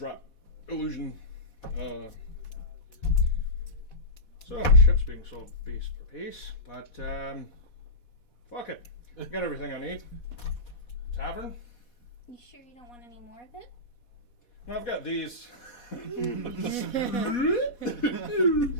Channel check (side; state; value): right; late; 4.1 ms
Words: illusion. So my ship's being sold piece for piece, but fuck it, I got everything I need. Tavern? You sure you don't want any more of it? No, I've got these.